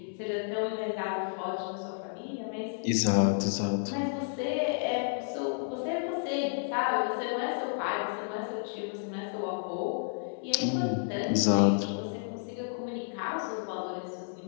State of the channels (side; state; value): right; silent; 57 dB below the other